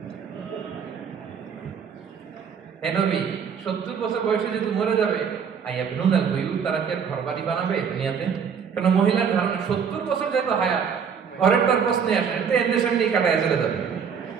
হে নবী, 70 বছর বয়সে যেহেতু মরে যাবে, আইয়া বেনুনাল বুয়ুত, তারা কি আর ঘর বাড়ি বানাবে দুনিয়াতে? কেন মহিলার ধারণা 70 বছর যেহেতু হায়াত, ঘরের তার প্রশ্নে আসে, তো এদের সামনে কাটায় চলে যাবে।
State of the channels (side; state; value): left; quieter; 6.9 dB